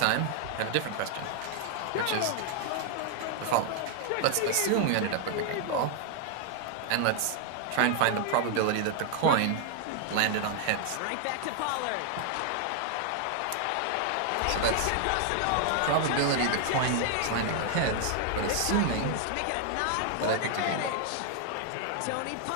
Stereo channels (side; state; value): both; different; correlation 0.00